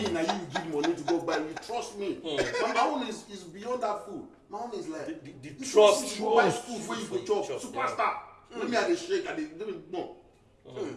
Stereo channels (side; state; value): both; identical; correlation 1.00